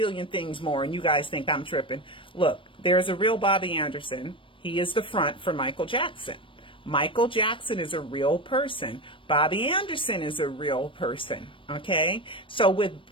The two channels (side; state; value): right; late; 0.25 ms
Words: things more, and you guys think I'm tripping. Look, there's a real Bobby Anderson. He is the front for Michael Jackson. Michael Jackson is a real person. Bobby Anderson is a real person. Okay? So